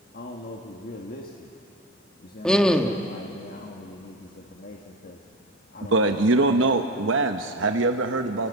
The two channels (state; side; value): normal; both; correlation 0.26